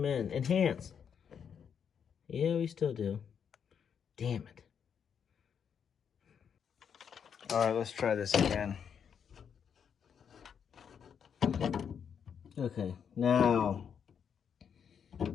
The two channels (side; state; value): right; quieter; 7.5 dB